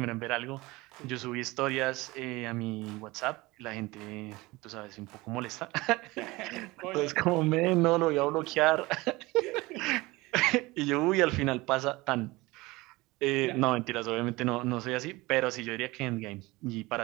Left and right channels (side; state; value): left; quieter; 21.6 dB